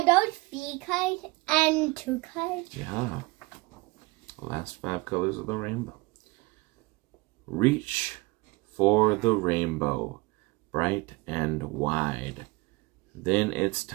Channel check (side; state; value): left; quieter; 23.8 dB